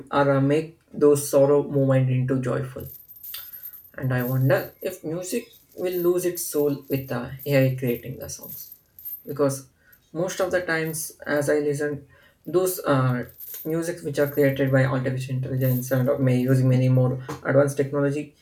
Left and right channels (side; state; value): both; identical; correlation 1.00